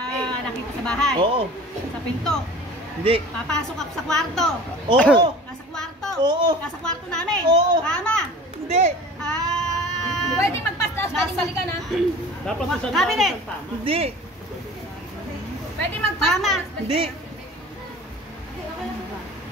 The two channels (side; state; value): both; normal; correlation 0.41